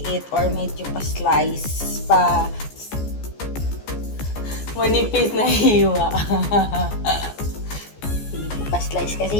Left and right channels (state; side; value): late; right; 14 ms